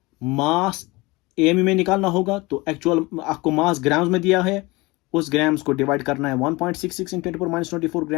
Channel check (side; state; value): right; quieter; 23.2 dB